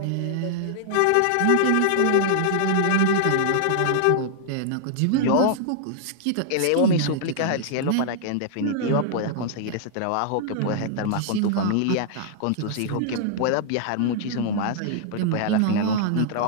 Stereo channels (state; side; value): different; both; correlation -0.01